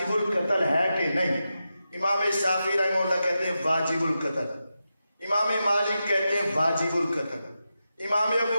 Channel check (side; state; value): both; inverted; correlation -0.90